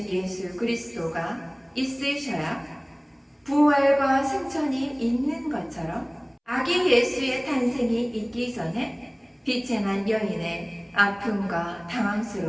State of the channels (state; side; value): identical; both; correlation 1.00